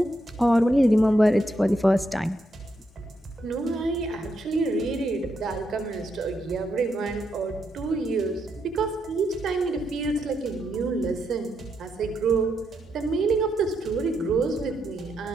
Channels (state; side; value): normal; both; correlation 0.80